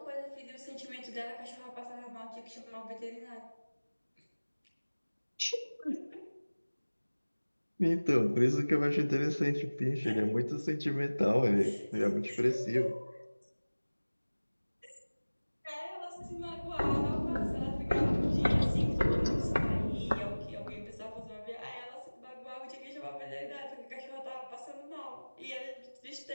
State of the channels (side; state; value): both; inverted; correlation -1.00